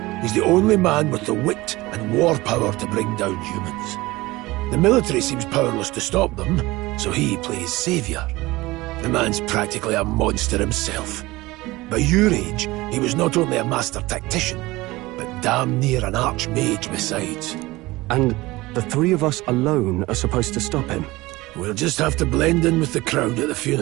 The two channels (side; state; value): left; quieter; 20.1 dB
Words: he's the only man with the wit and war power to bring down humans. The military seems powerless to stop them, so he plays savior. The man's practically a monster himself. By your age, he was not only a master tactician, but damn near an archmage besides. And the three of us alone are supposed to stop him? We'll just have to blend in with the crowd at the